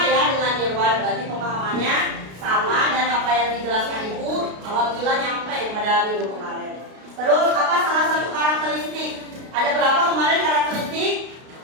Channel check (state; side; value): late; left; 33 ms